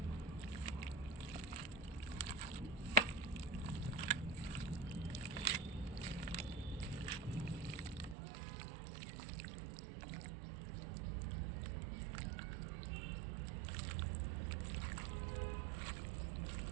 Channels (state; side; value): drops out; left; at 8.2 s